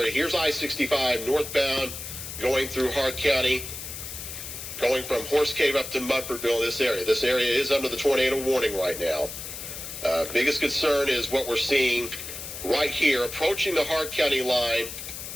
Here's I-65 northbound going through Hart County, going from Horse Cave up to Munfordville in this area. This area is under the tornado warning right now. Biggest concern is what we're seeing right here, approaching the Hart County line,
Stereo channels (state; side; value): noise; left; hiss, 9 dB below the sound